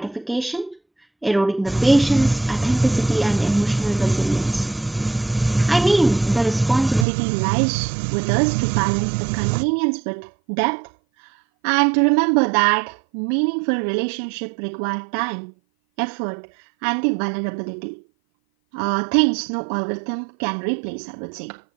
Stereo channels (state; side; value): drops out; left; at 7.1 s